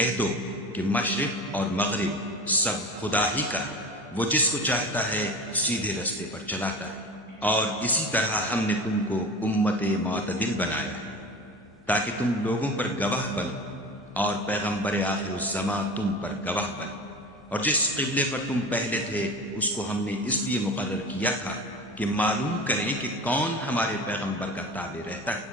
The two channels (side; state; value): both; normal; correlation 0.33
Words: دو کہ مشرق اور مغرب سب خدا ہی کا ہے، وہ جس کو چاہتا ہے سیدھے رستے پر چلاتا ہے، اور اسی طرح ہم نے تم کو امت معتدل بنایا ہے تاکہ تم لوگوں پر گواہ بنو اور پیغمبر آخر الزماں تم پر گواہ بنے۔ اور جس قبلے پر تم پہلے تھے اس کو ہم نے اس لیے مقرر کیا تھا کہ معلوم کریں کہ کون ہمارے پیغمبر کا تابع رہتا ہے